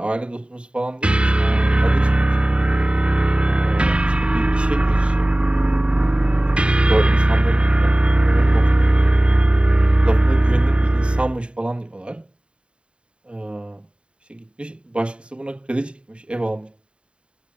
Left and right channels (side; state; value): left; late; 0.055 ms